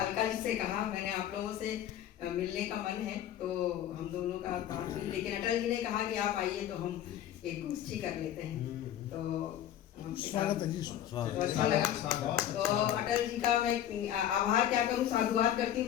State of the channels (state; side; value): quieter; right; 11.2 dB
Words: जी से कहा मैंने आप लोगों से मिलने का मन है, तो हम दोनों का बात हुई, लेकिन अटल जी ने कहा कि आप आइए तो हम एक गोष्ठी कर लेते हैं। तो स्वागत है जी, अच्छा लगा। तो अटल जी का मैं आभार क्या करूं, साधुवाद करती हूँ।